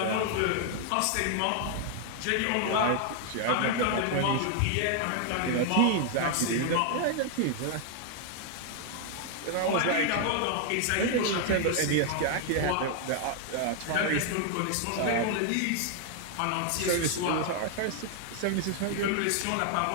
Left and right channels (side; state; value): both; different; correlation 0.00